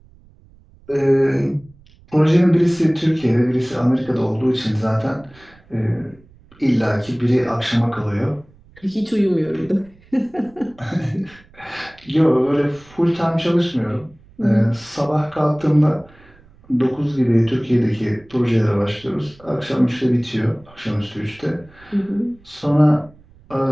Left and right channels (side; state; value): right; noise; rumble, 27 dB below the sound